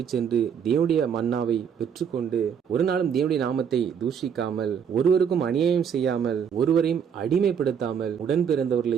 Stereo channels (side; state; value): left; quieter; 7.6 dB